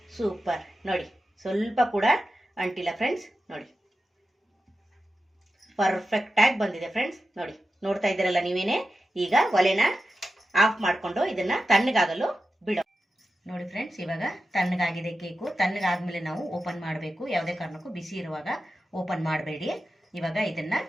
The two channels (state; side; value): normal; both; correlation 0.92